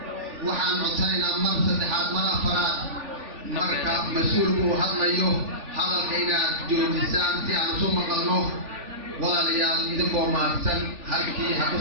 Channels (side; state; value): left; late; 3.4 ms